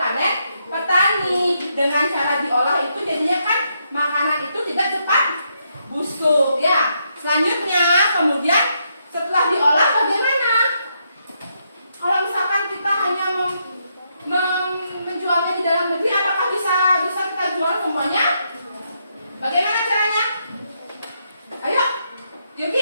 petani. Dengan cara diolah itu jadinya kan makanan itu tidak cepat busuk ya. Selanjutnya kemudian setelah diolah bagaimana? Kalau misalkan kita hanya menjualnya di dalam negeri, apakah bisa kita jual semuanya? Bagaimana caranya? Ayo,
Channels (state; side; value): inverted; both; correlation -0.78